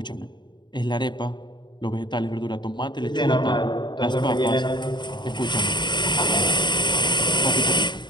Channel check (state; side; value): late; right; 0.22 ms